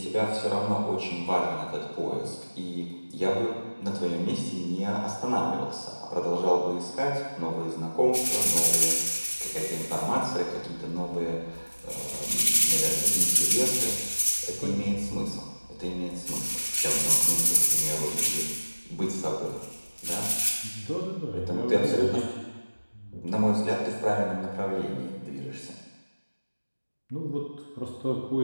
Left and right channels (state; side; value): inverted; both; correlation -1.00